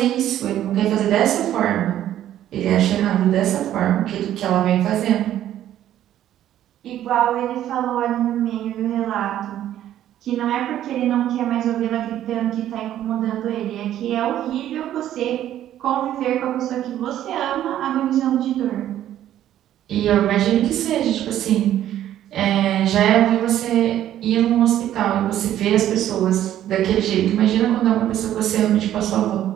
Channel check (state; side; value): quieter; left; 11.9 dB